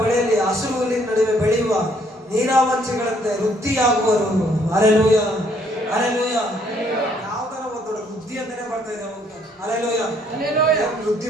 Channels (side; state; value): both; normal; correlation 0.66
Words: ಹಸಿರು ಹುಲ್ಲಿನ ನಡುವೆ ಬೆಳೆಯುವ ನೀರಾವಂಚಿಗಳಂತೆ ವೃದ್ಧಿಯಾಗುವರು. Hallelujah, hallelujah. ಯಾವ್ದಾರ ಒಂದು ವೃದ್ಧಿ ಅಂತಾನೆ ಬರ್ತಾ ಇದೆ ಅವಾಗ. ಹಲ್ಲೆಲೂಯಾ. ವೃದ್ಧಿ